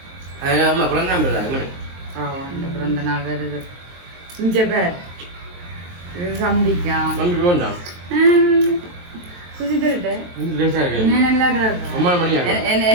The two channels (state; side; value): late; left; 23 ms